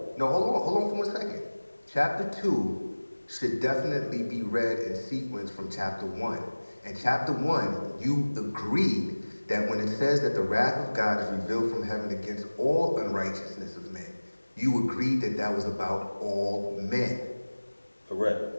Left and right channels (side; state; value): both; inverted; correlation -1.00